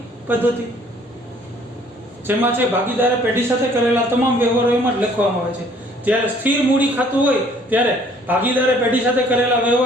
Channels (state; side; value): normal; both; correlation 0.59